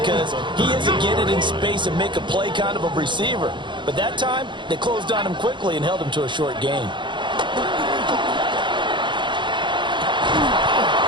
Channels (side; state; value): left; late; 0.23 ms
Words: he isn't getting in space and make a play kind of a receiver. But that time, they closed on him quickly and held him to a short gain. And